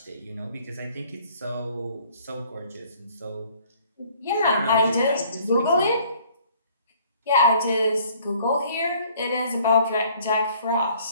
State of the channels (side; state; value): both; inverted; correlation -0.57